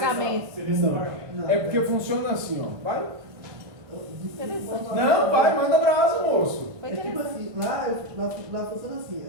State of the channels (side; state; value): left; late; 1.5 ms